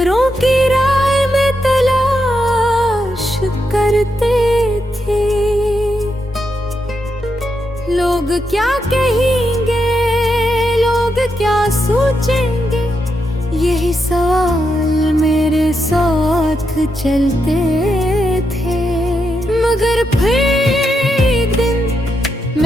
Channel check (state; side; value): normal; both; correlation 0.83